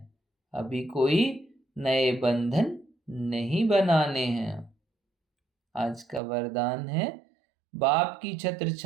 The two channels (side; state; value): left; drops out; at 6.2 s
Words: अभी कोई नए बंधन नहीं बनाने हैं। आज का वरदान है, बाप की छत्र